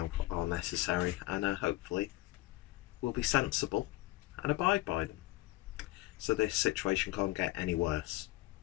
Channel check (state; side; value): quieter; right; 18.5 dB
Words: are necessary and hopefully will be sensible and abide by them. So this situation can't get any worse.